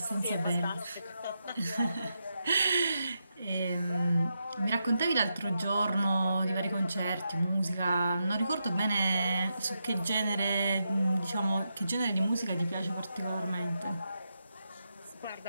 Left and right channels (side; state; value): both; inverted; correlation -0.85